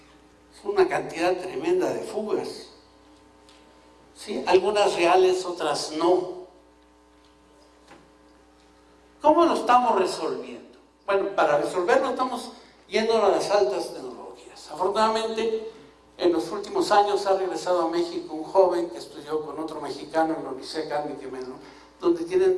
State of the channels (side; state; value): both; identical; correlation 1.00